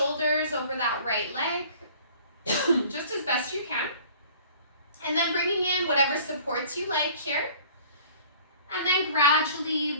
over that right leg, just as best you can, and then bringing in whatever supports you like here. And then gradually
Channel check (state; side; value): inverted; both; correlation -0.49